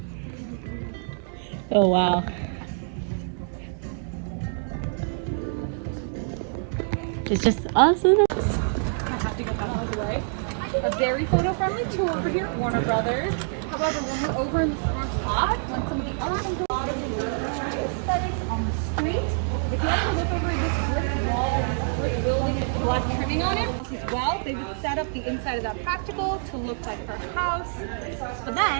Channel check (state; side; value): silent; left; 61 dB below the other